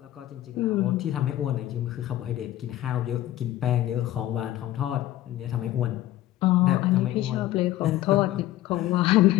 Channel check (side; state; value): right; quieter; 14.5 dB